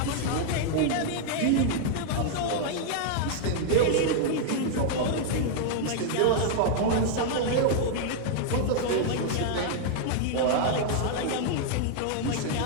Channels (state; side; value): different; both; correlation 0.00